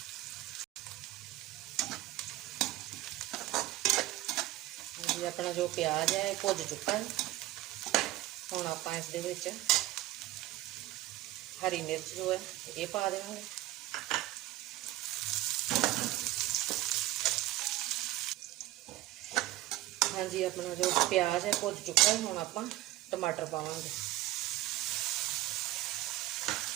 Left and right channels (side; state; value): left; quieter; 16.3 dB